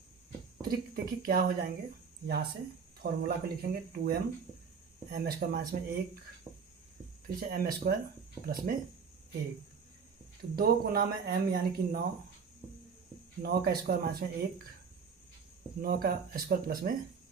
त्रिक देखिए क्या हो जाएंगे, यहाँ से फॉर्मूला को लिखेंगे 2m m स्क्वायर माइनस में 1, फिर से m स्क्वायर प्लस में 1। तो 2 गुना में m यानी कि 9, 9 का स्क्वायर माइनस में 1, 9 का स्क्वायर प्लस में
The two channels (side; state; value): left; quieter; 5.9 dB